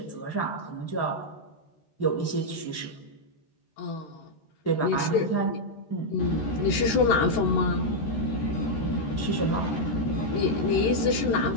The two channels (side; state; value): right; late; 13 ms